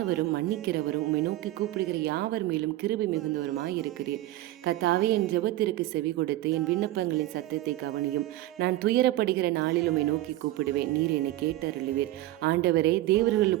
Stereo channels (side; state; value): left; quieter; 16.0 dB